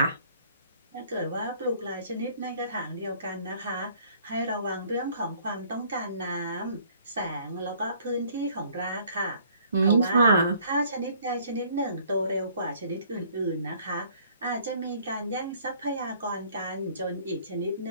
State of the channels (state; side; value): inverted; both; correlation -0.58